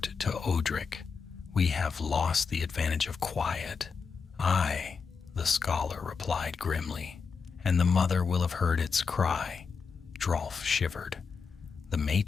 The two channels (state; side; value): quieter; right; 5.5 dB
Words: to Odric. "We have lost the advantage of quiet." "Aye," the scholar replied grimly, "and the mother will have heard its cry." Drolf shivered. "The